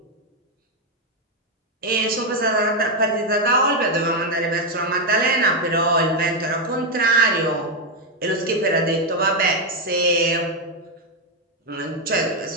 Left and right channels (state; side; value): normal; both; correlation 0.03